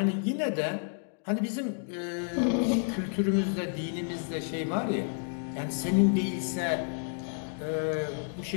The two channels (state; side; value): silent; right; 58 dB below the other